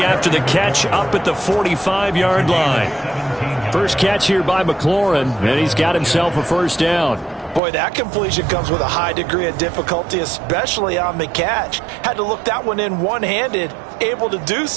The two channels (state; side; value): drops out; left; at 7.6 s